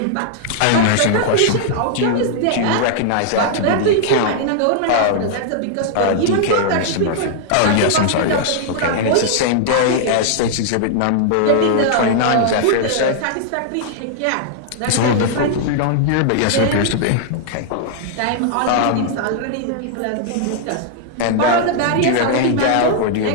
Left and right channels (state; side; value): different; both; correlation -0.01